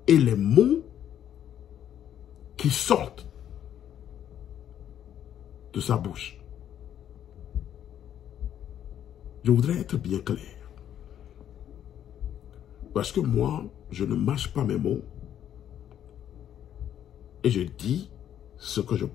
et les mots qui sortent de sa bouche. Je voudrais être bien clair. Parce que moi, je ne mâche pas mes mots et je dis ce que je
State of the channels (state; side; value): quieter; right; 10.3 dB